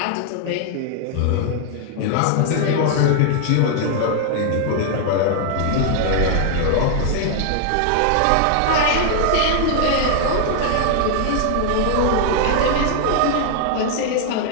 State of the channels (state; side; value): different; both; correlation 0.00